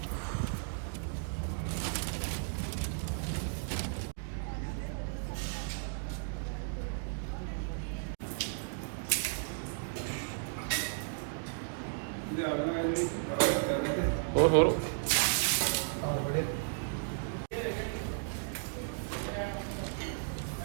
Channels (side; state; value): left; silent; digital silence